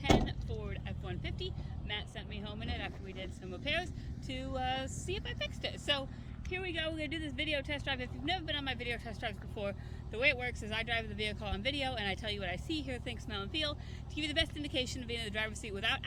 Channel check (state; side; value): identical; both; correlation 1.00